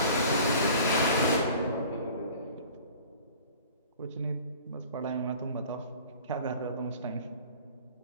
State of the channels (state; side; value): inverted; both; correlation -0.46